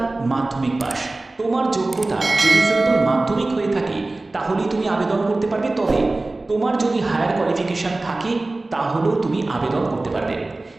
মাধ্যমিক পাস। তোমার যোগ্যতা যদি সিম্পল মাধ্যমিক হয়ে থাকে তাহলেই তুমি আবেদন করতে পারবে, তবে তোমার যদি হায়ার কোয়ালিফিকেশন থাকে তাহলেও তুমি আবেদন করতে পারবে।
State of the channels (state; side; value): quieter; left; 3.0 dB